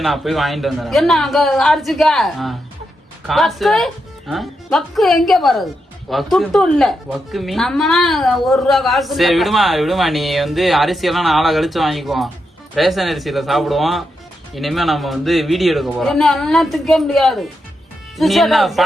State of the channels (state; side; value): normal; both; correlation 0.85